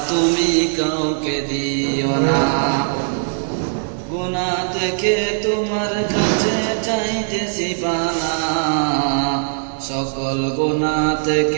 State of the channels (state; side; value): silent; left; digital silence